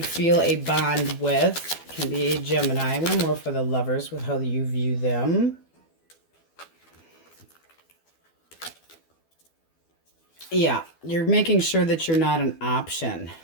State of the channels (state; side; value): late; right; 12 ms